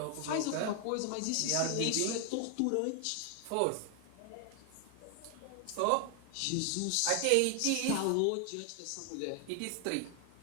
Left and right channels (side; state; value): both; different; correlation 0.00